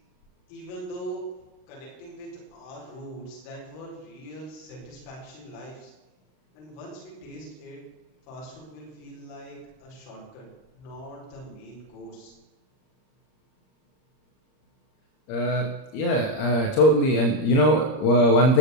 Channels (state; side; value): late; right; 38 ms